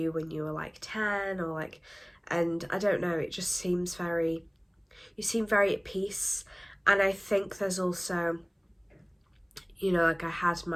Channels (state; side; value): identical; both; correlation 1.00